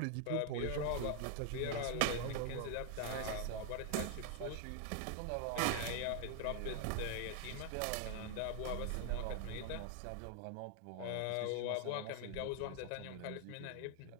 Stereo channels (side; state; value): both; different; correlation 0.00